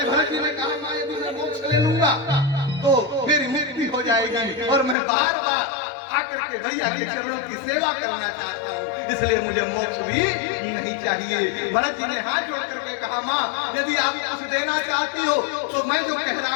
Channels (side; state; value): right; drops out; at 5.0 s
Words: भरत जी ने कहा यदि मैं मोक्ष ले लूंगा तो मेरी मुक्ति हो जाएगी और मैं बार बार आकर के भैया के चरणों की सेवा करना चाहता हूँ, इसलिए मुझे मोक्ष भी नहीं चाहिए। भरत जी ने हाथ जोड़ करके कहा माँ यदि आप कुछ देना चाहती हो तो मैं जो कह रहा